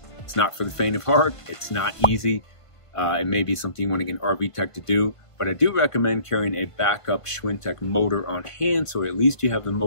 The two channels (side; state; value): right; late; 1.5 ms